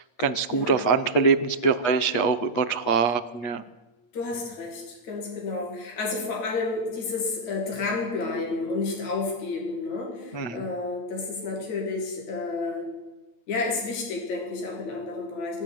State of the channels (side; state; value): right; late; 8.8 ms